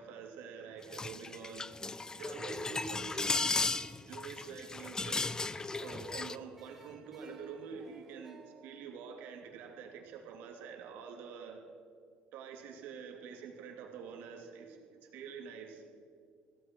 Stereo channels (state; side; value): normal; both; correlation 0.39